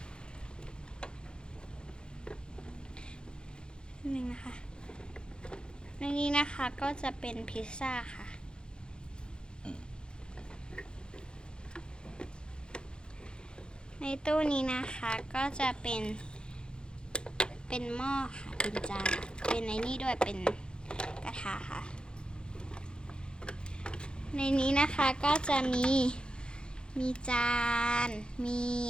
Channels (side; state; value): right; late; 0.050 ms